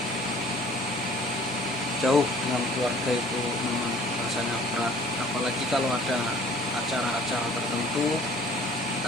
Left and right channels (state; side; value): normal; both; correlation 0.52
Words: Jauh dengan keluarga itu memang rasanya berat, apalagi kalau ada acara-acara tertentu,